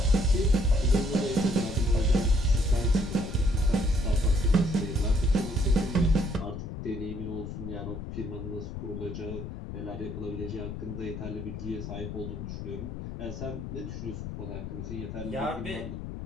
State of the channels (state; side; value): noise; left; rumble, 8 dB below the sound